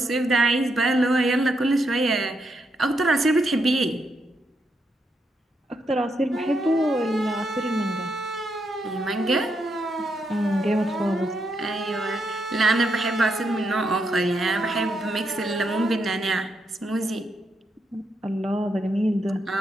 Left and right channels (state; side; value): normal; both; correlation 0.80